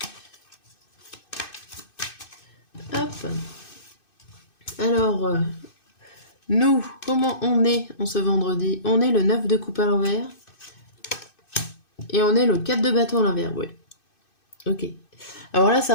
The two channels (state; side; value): late; right; 2.6 ms